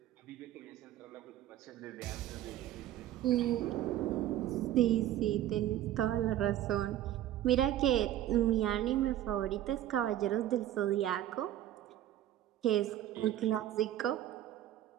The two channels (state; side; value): quieter; left; 12.6 dB